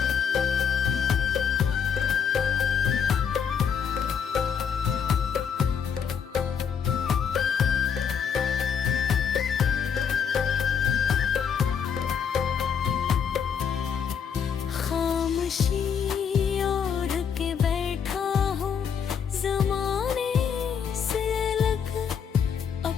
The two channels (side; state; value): right; quieter; 7.2 dB